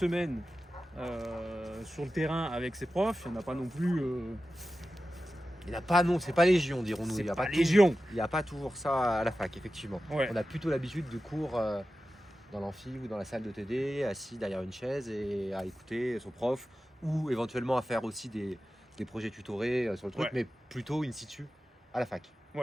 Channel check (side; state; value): both; normal; correlation 0.93